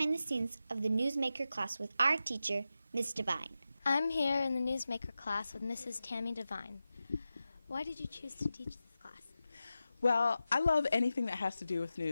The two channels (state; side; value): inverted; both; correlation -0.92